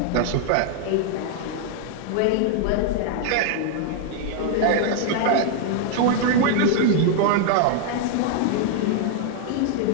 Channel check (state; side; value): different; both; correlation 0.00